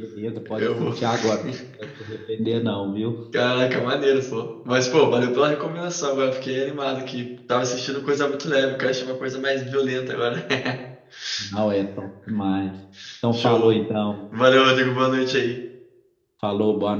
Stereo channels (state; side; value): identical; both; correlation 1.00